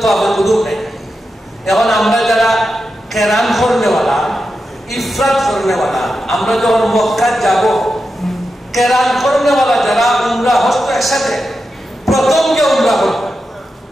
তাওয়াফে কুদুম নেই। এখন আমরা যারা কেরান করনেওয়ালা, ইফরাদ করনেওয়ালা, আমরা যখন মক্কা যাব, কেরান করনেওয়ালা যারা উমরা হজ তো একসাথে, প্রথম যে উমরা করবে,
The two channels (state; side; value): normal; both; correlation 0.89